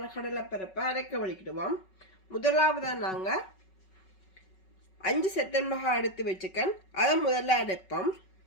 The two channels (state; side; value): late; right; 5.3 ms